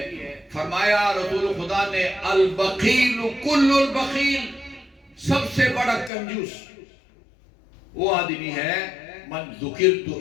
فرمایا رسول خدا نے البخیل کل البخیل، سب سے بڑا کنجوس وہ آدمی ہے من ذکرت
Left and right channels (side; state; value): right; drops out; at 6.1 s